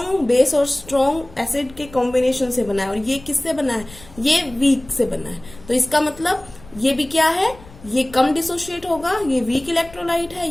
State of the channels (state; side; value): noise; left; rumble, 21 dB below the sound